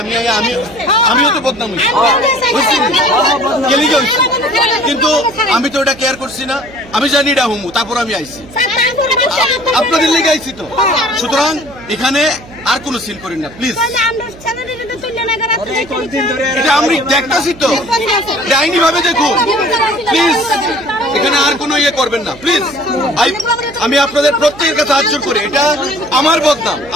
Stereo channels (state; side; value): noise; right; hum, 20 dB below the sound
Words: আমিও তো বদনাম হয়েছি, কিন্তু আমি তো এটা কেয়ার করছি না। আমি জানি এটা হুমু, তারপর আমি আইছি, আপনাদের লেগে আইছি তো। সুতরাং এখানে আর কোনো সিন করেন না প্লিজ। এটা আমি দেখতেছি তো, আইনি ভাবে দেখুন প্লিজ। এখানে আর কোনো ইয়ে করবেন না প্লিজ। আমি আপনাদের প্রত্যেকের কাছে হাত জোর করে, এটা আমার বদনাম,